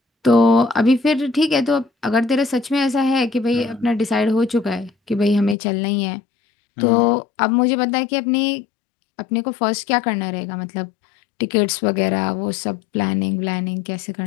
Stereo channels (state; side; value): drops out; right; at 5.6 s